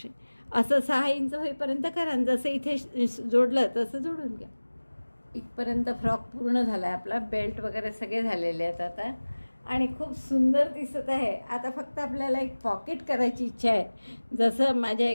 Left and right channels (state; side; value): inverted; both; correlation -1.00